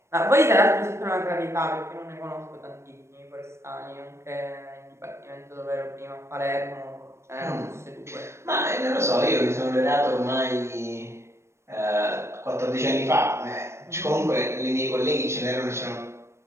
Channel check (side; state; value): left; late; 0.13 ms